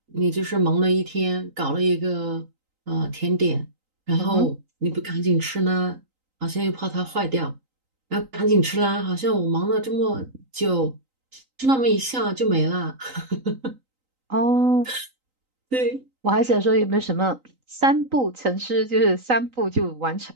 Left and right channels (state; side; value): late; left; 3.9 ms